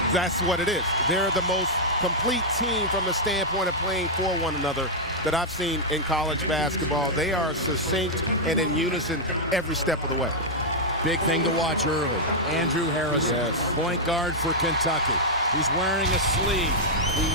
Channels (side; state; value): both; normal; correlation -0.05